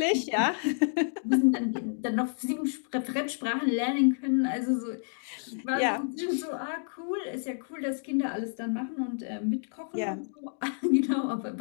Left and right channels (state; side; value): silent; right; digital silence